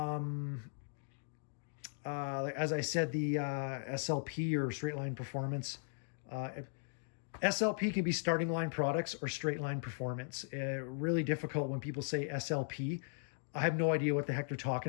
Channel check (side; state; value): right; silent; digital silence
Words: as I said, the SLP, or straight line performance. SLP can be starting line products or straight line performance. Really difficult when people say SLP. I have no idea what the heck they're